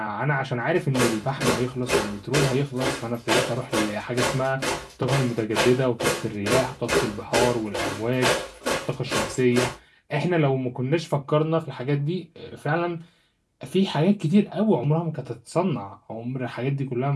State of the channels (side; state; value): both; identical; correlation 1.00